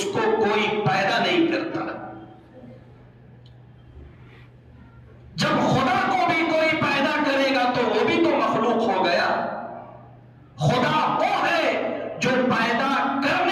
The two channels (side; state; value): both; identical; correlation 1.00